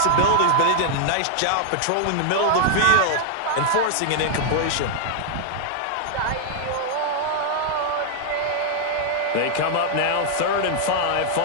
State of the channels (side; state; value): both; different; correlation -0.01